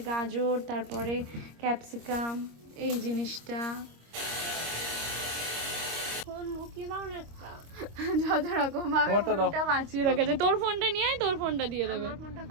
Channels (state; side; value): late; left; 26 ms